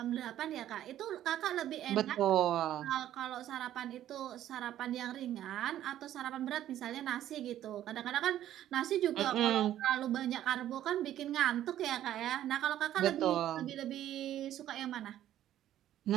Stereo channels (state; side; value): quieter; left; 12.2 dB